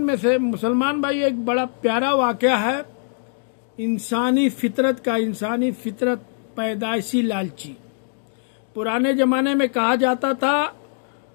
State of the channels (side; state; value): right; silent; digital silence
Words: से मुसलमान भाई एक बड़ा प्यारा वाक़या है इंसानी फितरत पैदाइशी लालची। पुराने ज़माने में कहा जाता था,